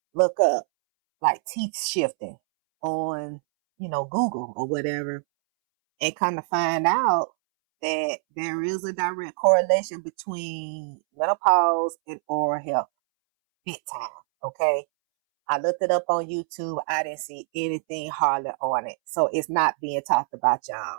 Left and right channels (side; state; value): left; silent; 62 dB below the other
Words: look up like teeth shifting on, Google or whatever, and kind of find out that there is a direct correlation between menopause and oral health. Big time. Okay. I looked it up on YouTube. I didn't see anything hardly on it. So it's not being talked about,